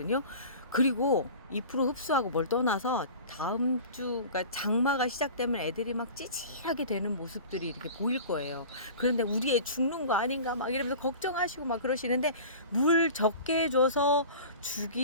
그리고 잎으로 흡수하고 뭘 떠나서 다음 주, 그러니까 장마가 시작되면 애들이 막 찌질하게 되는 모습들이 이렇게 보일 거예요. 그런데 우리 애 죽는 거 아닌가 막 이러면서 걱정하시고 막 그러시는데, 물 적게 줘서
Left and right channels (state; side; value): inverted; both; correlation -0.39